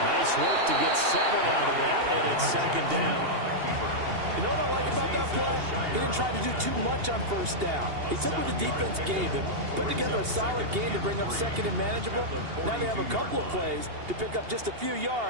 work to get 7 out of that, and it's 2nd down. You know what I like about that play? He didn't try to do too much on 1st down. He took what the defense gave him, put together a solid game to bring up 2nd and manageable. Now they have a couple of plays to pick up just a few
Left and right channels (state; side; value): late; left; 2.8 ms